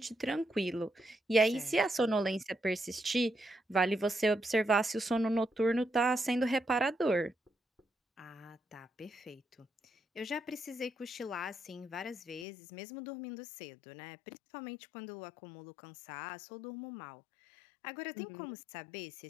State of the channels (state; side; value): drops out; right; at 12.5 s